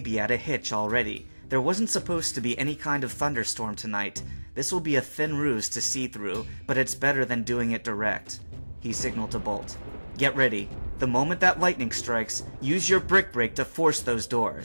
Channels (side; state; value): both; inverted; correlation -1.00